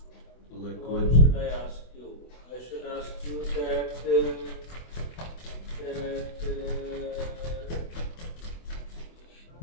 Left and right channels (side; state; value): right; late; 24 ms